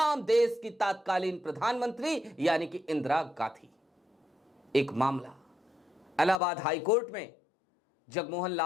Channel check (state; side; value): drops out; right; at 6.4 s